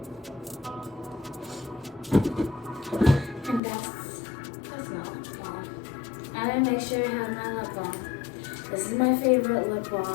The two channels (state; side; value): drops out; right; at 3.6 s